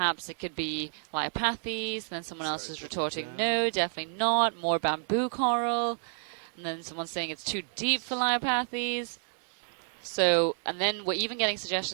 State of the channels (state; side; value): silent; left; 58 dB below the other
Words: it could be Leiopathes, and then someone else is retorting, no, definitely not, more bamboo coral, and then someone's saying it's too deep for Leiopathes. So, and then we're even getting